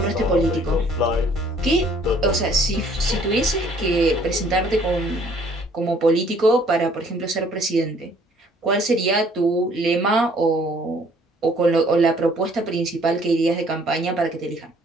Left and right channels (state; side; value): normal; both; correlation 0.59